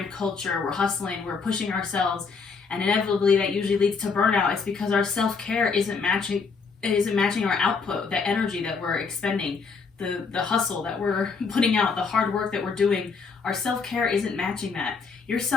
culture, we're hustling, we're pushing ourselves, and inevitably that usually leads to burnout. It's because our self-care isn't matching our output, the energy that we're expending, the hustle that we're putting out, the hard work that we're doing. Our self-care isn't matching that. Your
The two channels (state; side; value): quieter; right; 5.0 dB